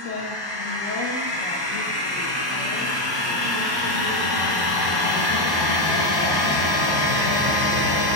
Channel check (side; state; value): left; late; 1.1 ms